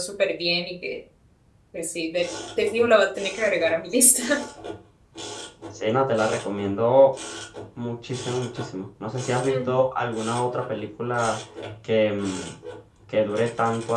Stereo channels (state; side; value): identical; both; correlation 1.00